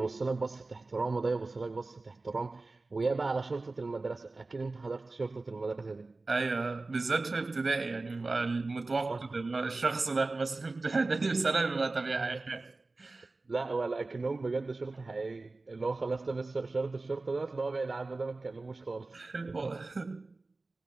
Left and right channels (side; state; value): left; quieter; 3.4 dB